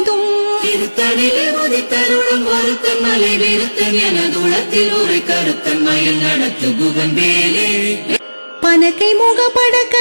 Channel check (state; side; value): inverted; both; correlation -1.00